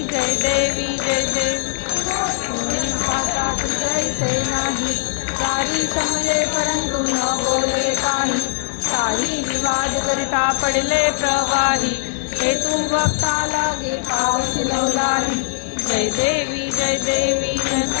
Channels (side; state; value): right; silent; digital silence